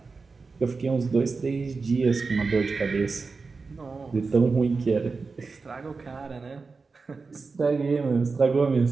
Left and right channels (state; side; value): quieter; left; 4.3 dB